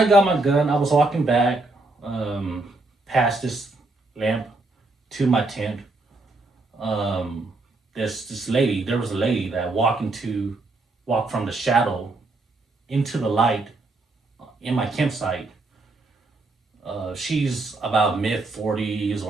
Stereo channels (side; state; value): left; quieter; 3.1 dB